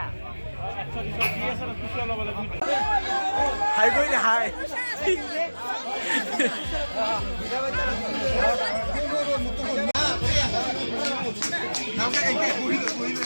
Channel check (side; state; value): both; inverted; correlation -1.00